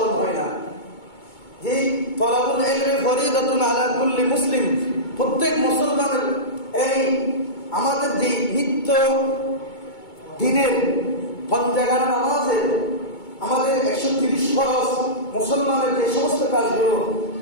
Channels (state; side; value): late; right; 2.2 ms